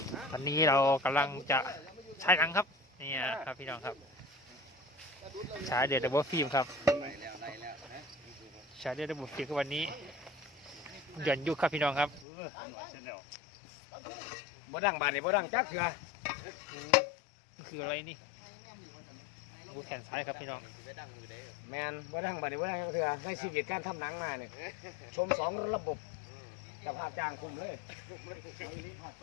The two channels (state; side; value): drops out; right; at 12.2 s